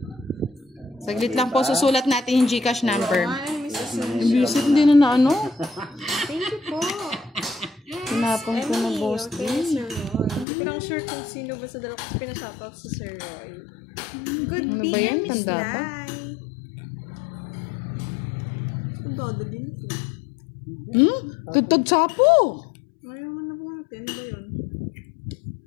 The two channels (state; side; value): drops out; right; at 10.5 s